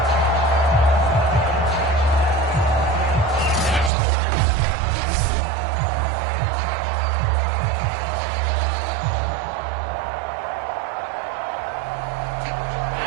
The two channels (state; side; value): drops out; left; at 3.9 s